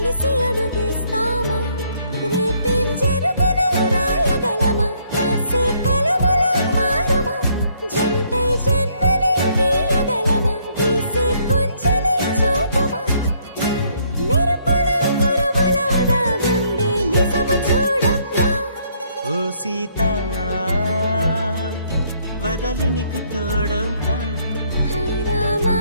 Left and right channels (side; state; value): both; inverted; correlation -0.68